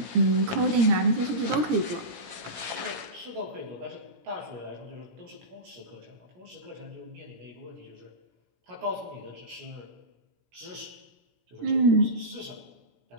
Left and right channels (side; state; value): left; late; 16 ms